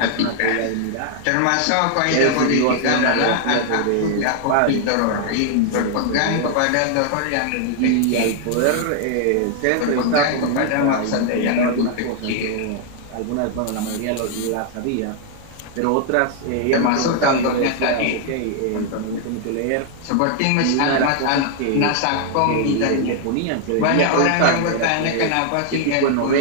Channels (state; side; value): different; both; correlation 0.00